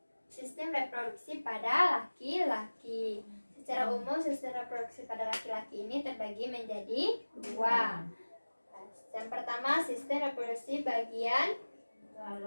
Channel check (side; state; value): both; inverted; correlation -1.00